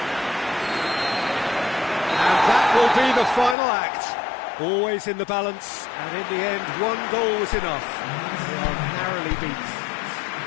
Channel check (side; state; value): right; drops out; at 3.6 s